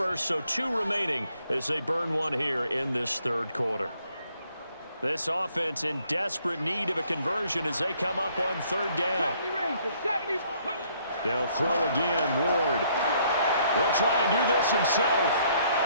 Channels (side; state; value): both; inverted; correlation -0.66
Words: so 2 remaining as they burn one here in this 3rd quarter. This offense in desperate need of a conversion as they come up on 3rd down. They'll throw again, Ward. He'll try and do this himself.